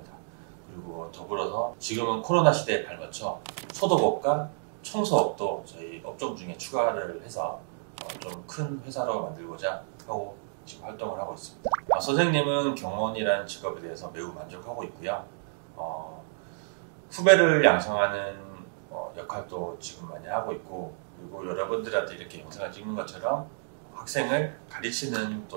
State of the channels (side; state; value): left; silent; digital silence